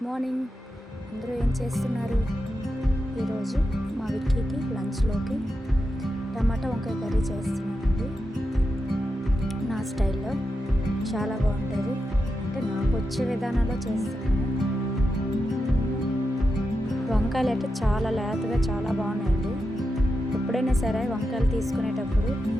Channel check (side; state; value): both; normal; correlation 0.88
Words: morning. అందరూ ఏం చేస్తున్నారు? ఈరోజు మా విక్కీకి లంచ్లోకి టమాటా వంకాయ కర్రీ చేస్తున్నానండి. నా స్టైల్లో చాలా బాగుంటుంది, అంటే నాకు వచ్చే విధానంలో చేస్తున్నాను. వంకాయలు అయితే చాలా లేతగా చాలా బాగున్నాయండి. ఎప్పుడైనా సరే వంకాయలు తీసుకునేటప్పుడు